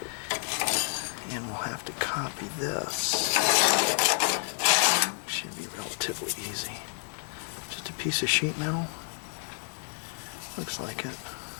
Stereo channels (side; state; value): right; silent; digital silence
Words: And we'll have to copy this. Should be relatively easy. Just a piece of sheet metal. Looks like it.